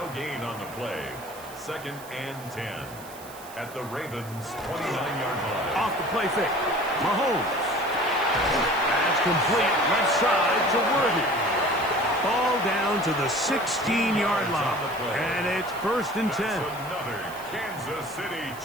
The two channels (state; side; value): noise; right; hiss, 18 dB below the sound